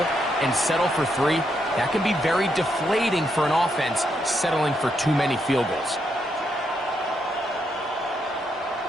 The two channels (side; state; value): both; normal; correlation 0.79